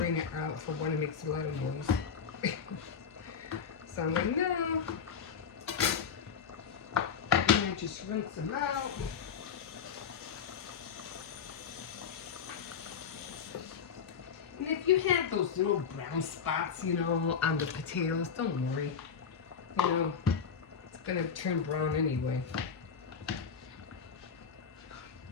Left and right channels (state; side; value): quieter; right; 6.7 dB